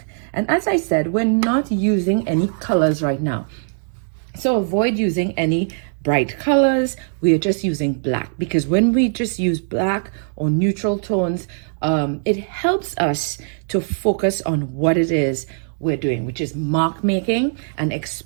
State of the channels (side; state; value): left; silent; digital silence